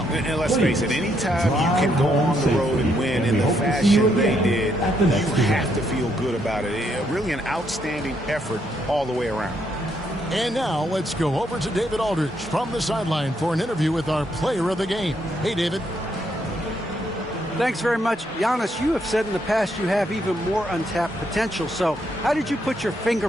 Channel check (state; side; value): normal; both; correlation 0.75